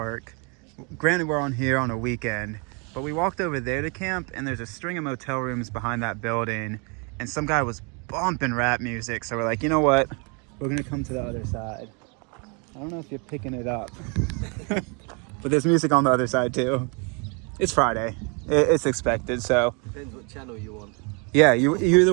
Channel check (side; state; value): left; quieter; 33.9 dB